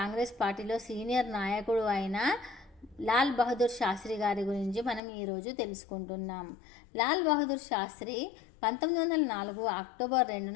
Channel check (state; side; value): drops out; right; at 5.0 s